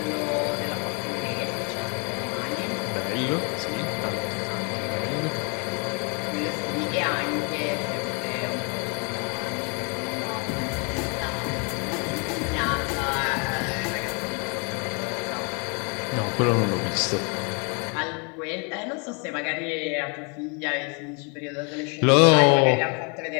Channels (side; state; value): right; quieter; 34.9 dB